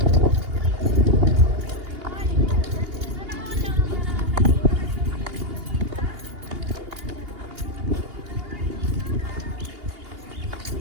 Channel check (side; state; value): left; late; 2.8 ms